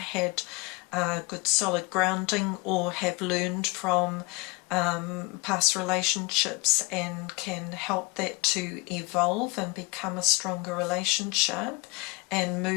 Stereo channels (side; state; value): right; quieter; 26.3 dB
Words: good solid grounding, or have learned from past relationships and can help that to evolve and become a stronger relationship and